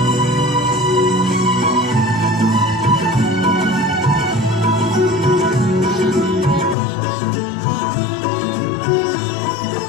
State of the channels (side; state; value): right; drops out; at 6.8 s